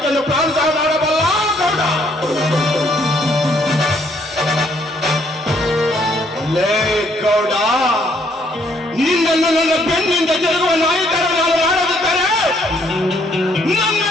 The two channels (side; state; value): both; normal; correlation 0.67